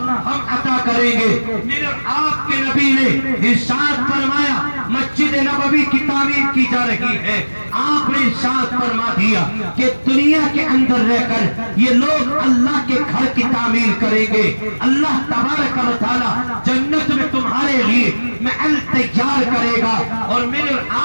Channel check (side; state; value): both; inverted; correlation -1.00